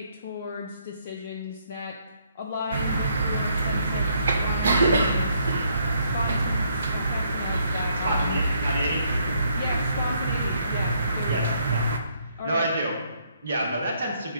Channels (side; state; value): both; inverted; correlation -0.71